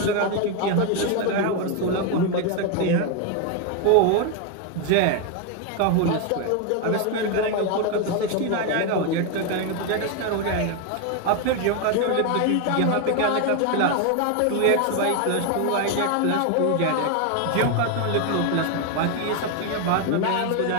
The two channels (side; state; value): both; different; correlation 0.01